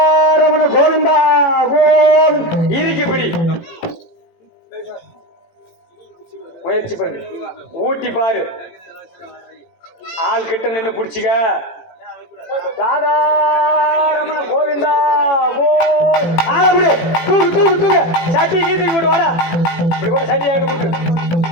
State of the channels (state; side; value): late; right; 18 ms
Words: கோவிந்தா கோவிந்த். இறுக்கி பிடி, முயற்சி பண்ணி ஊட்டி பாரு, ஆள் கிட்ட நின்று பிடிச்சிக்க. ராதாரமண கோவிந்தா கோவிந்த். தூக்கு தூக்கு தூக்கு, சட்டி கீதி போட்டு வாடா. சட்டி